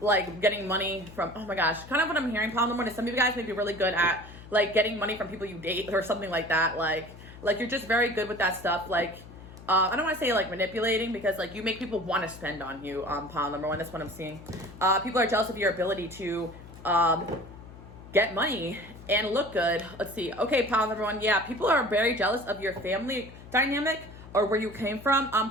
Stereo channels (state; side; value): noise; left; hum, 17 dB below the sound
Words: getting money from, oh my gosh, kind of what I'm hearing, pile number one, is some of you guys may be really good at getting money from people you date or something like that. Like you're just very good with that stuff. I don't want to say manipulating, because you make people want to spend on you. Pile number one, that's what I'm seeing. People are jealous of your ability to get money and look good. Let's see. Okay, pile number one, yeah, people are very jealous of your family dynamic or where you came from.